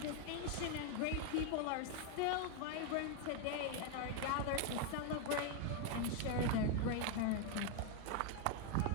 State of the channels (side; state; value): both; different; correlation 0.01